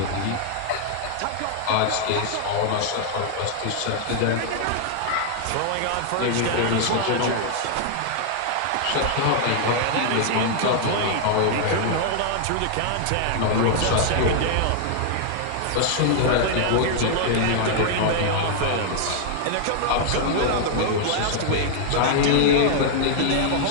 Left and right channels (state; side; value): different; both; correlation -0.01